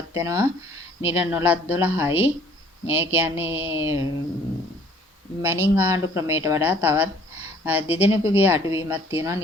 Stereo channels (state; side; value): normal; both; correlation 0.56